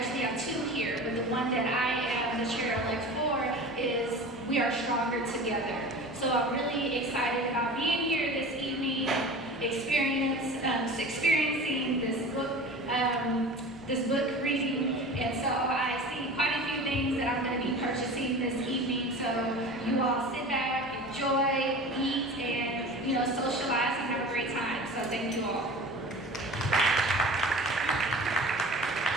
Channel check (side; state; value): both; normal; correlation 0.37